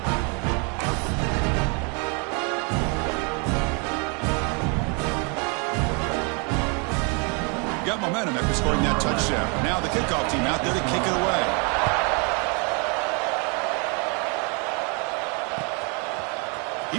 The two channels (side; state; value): left; quieter; 33.4 dB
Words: Got momentum after scoring that touchdown. Now the kickoff team out there to kick it away.